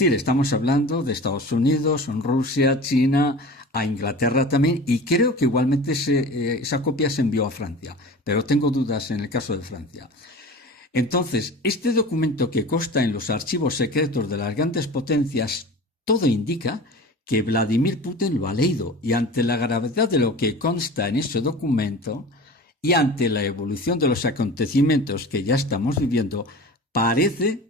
estamos hablando de Estados Unidos, Rusia, China, a Inglaterra también, y creo que igualmente esa copia se envió a Francia, pero tengo dudas en el caso de Francia. Entonces, este documento que consta en los archivos secretos de las grandes potencias, todo indica que Vladimir Putin lo ha leído, y ante la gravedad de lo que consta en ese documento y ante la evolución de los acontecimientos que ya estamos viviendo,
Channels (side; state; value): both; normal; correlation 0.36